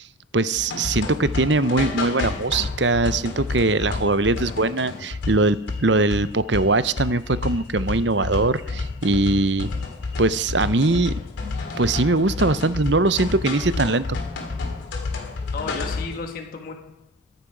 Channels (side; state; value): both; normal; correlation 0.31